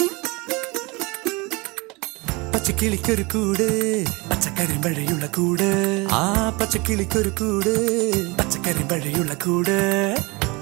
പച്ചക്കിളിക്കൊരു കൂട് പച്ചക്കരിമ്പഴയുള്ള കൂട്, ആ പച്ചക്കിളിക്കൊരു കൂട് പച്ചക്കരിമ്പഴയുള്ള കൂട്.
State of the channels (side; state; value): left; quieter; 25.9 dB